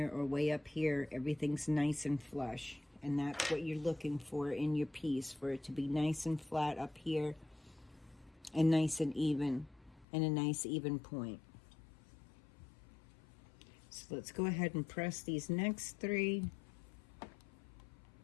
or way up here. Everything's nice and flush. And that's what you're looking for in your piece, for it to be nice and flat up here and nice and even, and a nice even point. So let's go ahead and press these next 3.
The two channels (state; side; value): drops out; right; at 10.1 s